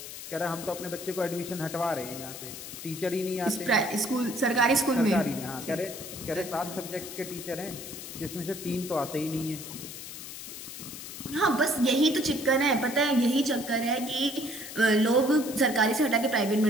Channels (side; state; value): left; noise; hiss, 10 dB below the sound